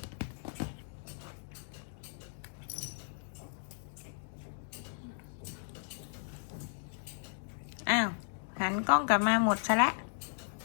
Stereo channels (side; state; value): right; silent; digital silence